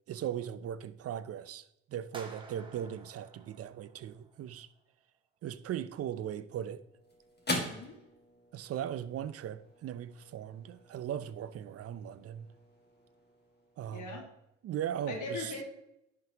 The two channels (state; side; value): quieter; left; 5.7 dB